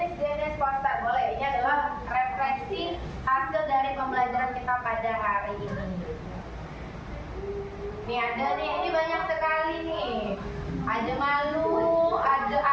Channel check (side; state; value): both; identical; correlation 1.00